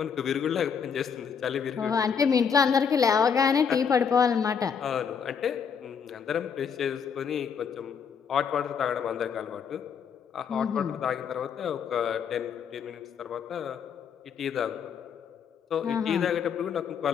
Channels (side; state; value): right; quieter; 6.8 dB